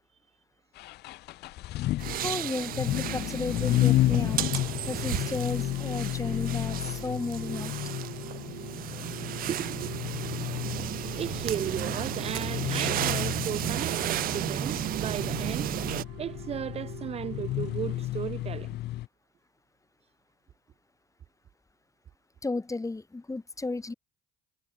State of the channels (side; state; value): both; normal; correlation 0.37